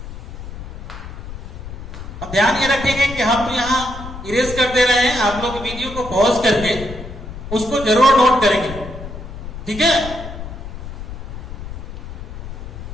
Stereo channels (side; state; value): left; noise; rumble, 10 dB below the sound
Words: अब ध्यान ये रखेंगे कि हम यहां इरेज कर दे रहे हैं, आप लोग वीडियो को पॉज करके उसको जरूर नोट करेंगे, ठीक है।